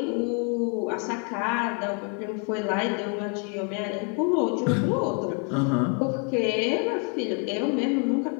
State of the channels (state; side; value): quieter; right; 37.7 dB